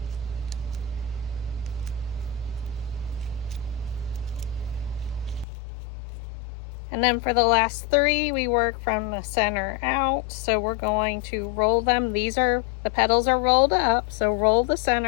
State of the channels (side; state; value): right; drops out; at 5.5 s